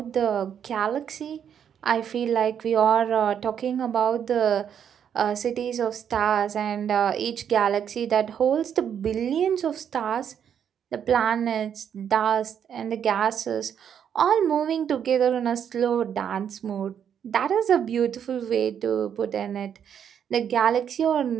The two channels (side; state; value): left; quieter; 8.5 dB